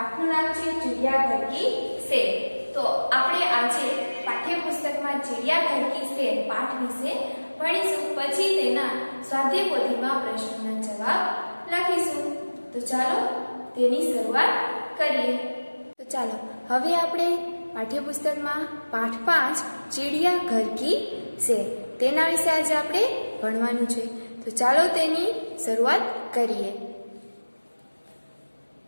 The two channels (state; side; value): inverted; both; correlation -1.00